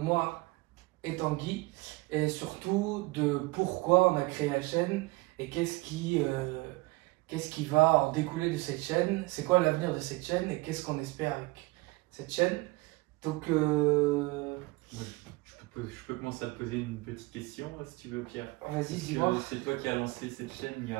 et Tanguy, et surtout de pourquoi on a créé la chaîne et qu'est-ce qui va en découler de cette chaîne, c'est quoi l'avenir de cette chaîne et qu'est-ce qu'on espère avec cette chaîne. Donc, Ouais, je peux commencer à te poser une petite question, si tu veux, Pierre. vas-y, Parce dis-moi. que c'est toi qui as lancé cette chaîne il y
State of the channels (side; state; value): left; quieter; 23.1 dB